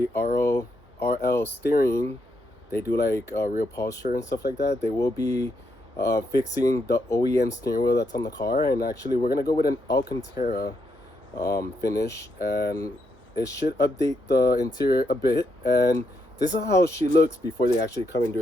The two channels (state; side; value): normal; both; correlation 0.79